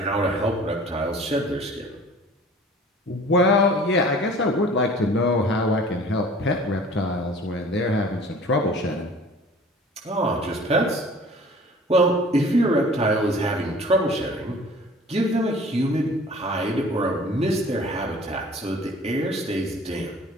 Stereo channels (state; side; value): normal; both; correlation 0.47